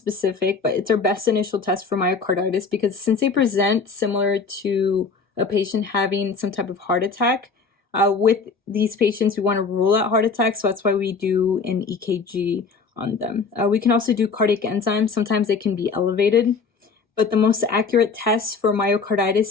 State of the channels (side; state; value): right; quieter; 4.9 dB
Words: but it's our best initial test for myocarditis because since they present similar to a patient having some type of heart attack, with these patients, we want to rule out heart attacks, so that's why we do an EKG on them. We can also do cardiac enzymes. Sometimes they can be elevated, but the most accurate test for